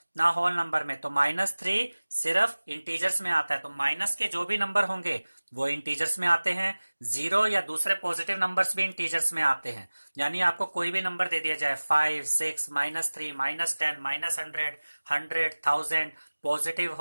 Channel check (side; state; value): both; inverted; correlation -1.00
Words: ना होल नंबर में, तो -3 सिर्फ इंटीजर्स में आता है। तो माइनस के जो भी नंबर होंगे वो इंटीजर्स में आते हैं। 0 या दूसरे पॉजिटिव नंबर्स भी इंटीजर्स में आते हैं। यानी आपको कोई भी नंबर दे दिया जाए, 5 6 -3 -10 -100 100 1000, पॉजिटिव